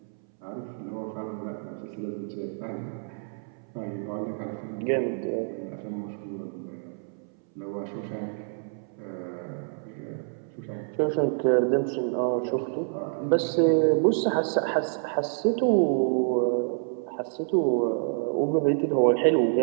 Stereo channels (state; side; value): silent; left; 60 dB below the other